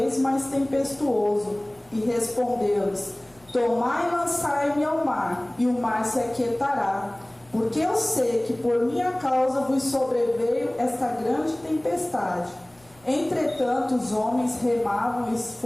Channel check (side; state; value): right; noise; rumble, 29 dB below the sound